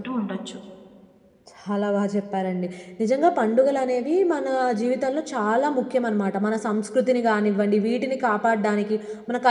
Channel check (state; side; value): identical; both; correlation 1.00